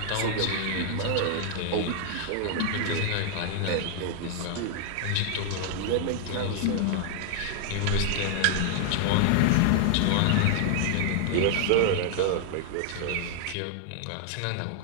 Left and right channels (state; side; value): different; both; correlation 0.00